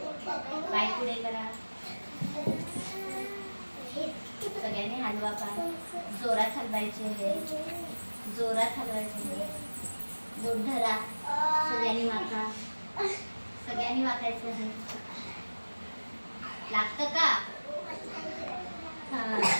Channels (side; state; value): both; inverted; correlation -1.00